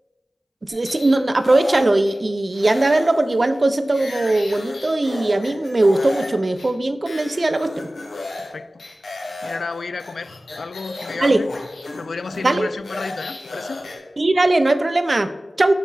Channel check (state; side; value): normal; both; correlation 0.97